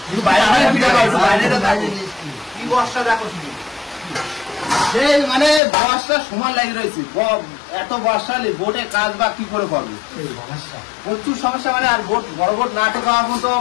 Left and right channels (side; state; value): right; drops out; at 5.6 s